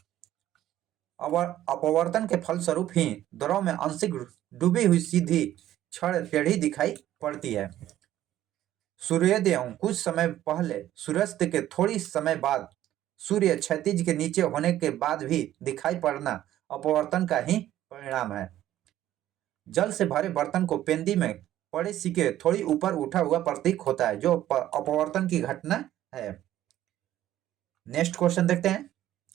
अपवर्तन के फलस्वरूप ही द्रव में आंशिक डूबी हुई सीधी क्षण टेढ़ी दिखाई पड़ती है। सूर्योदय कुछ समय पहले, सूर्यास्त के थोड़ी समय बाद, सूर्य क्षैतिज के नीचे होने के बाद भी दिखाई पड़ना अपवर्तन का ही परिणाम है। जल से भरे बर्तन को पेंदी में पड़े सिक्के थोड़ी ऊपर उठा हुआ प्रतीक होता है, जो अपवर्तन की घटना है। नेक्स्ट क्वेश्चन देखते हैं।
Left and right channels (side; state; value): left; quieter; 13.0 dB